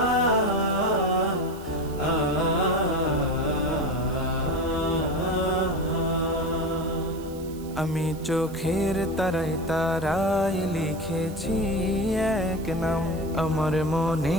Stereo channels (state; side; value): noise; right; hiss, 21 dB below the sound